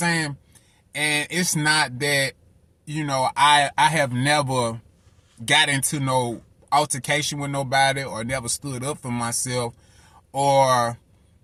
And it's not that, I have never got into no altercation with nobody or never stood up for myself or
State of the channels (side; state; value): both; identical; correlation 1.00